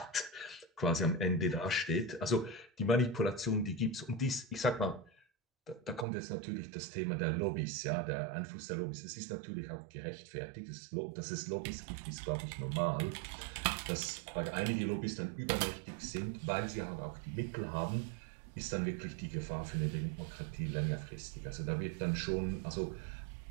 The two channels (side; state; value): left; drops out; at 6.1 s